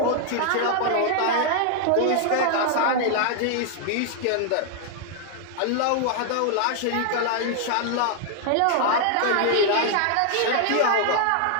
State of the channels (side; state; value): both; different; correlation 0.00